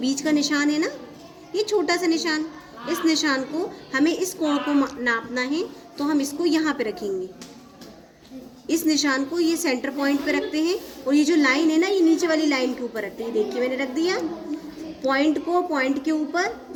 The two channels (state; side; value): identical; both; correlation 1.00